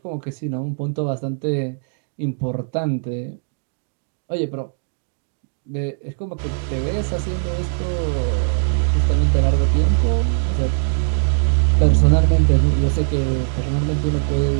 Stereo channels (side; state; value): left; silent; digital silence